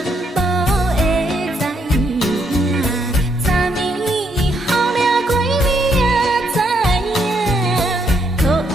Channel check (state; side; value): normal; both; correlation 0.74